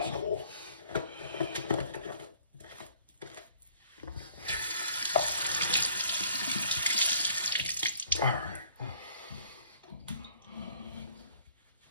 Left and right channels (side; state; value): both; inverted; correlation -0.57